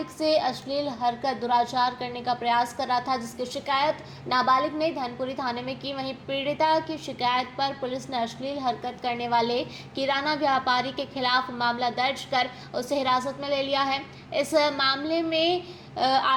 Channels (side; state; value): both; identical; correlation 1.00